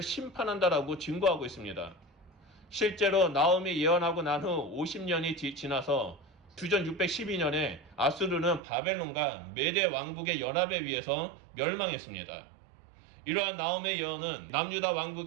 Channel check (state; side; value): drops out; left; at 8.6 s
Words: 심판한다라고 증거하고 있습니다. 실제로 나움이 예언하고 난 후 50년이 지나서 주전 612년에 아수르는 바벨론과 메대 왕국의 연합에 의해서 멸망했습니다. 이러한 나움의 예언은 남유다